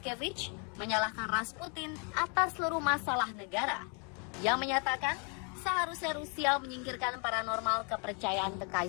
menyalahkan Rasputin atas seluruh masalah negara. Yang menyatakan seharusnya Rusia menyingkirkan paranormal kepercayaan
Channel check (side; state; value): right; quieter; 37.2 dB